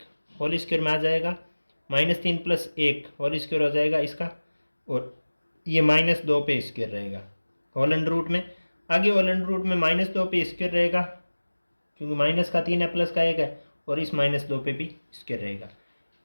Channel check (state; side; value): inverted; both; correlation -1.00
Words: होल स्क्वायर में आ जाएगा, -3 प्लस 1 होल स्क्वायर हो जाएगा इसका, और ये -2 पे स्क्वायर रहेगा होल अंडर रूट में। आगे होल अंडर रूट में -2 पे स्क्वायर रहेगा क्योंकि माइनस का 3 है प्लस का 1 है, और इस -2 पे भी स्क्वायर रहेगा।